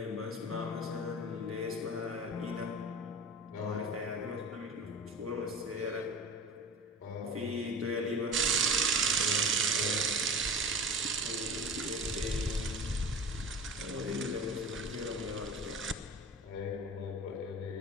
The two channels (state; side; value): normal; both; correlation 0.34